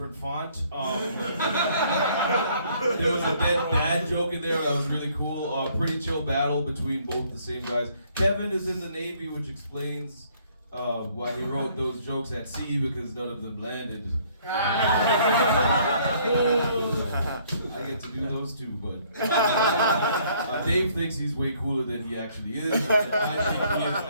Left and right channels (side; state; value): both; inverted; correlation -0.63